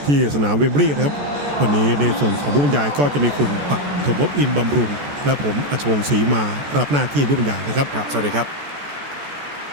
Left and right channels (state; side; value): late; left; 14 ms